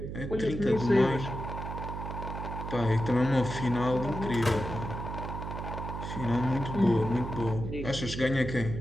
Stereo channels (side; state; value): right; noise; hum, 6 dB below the sound